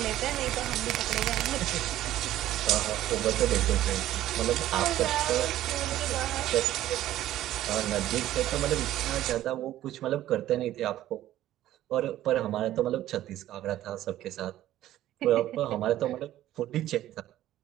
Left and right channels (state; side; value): quieter; left; 13.6 dB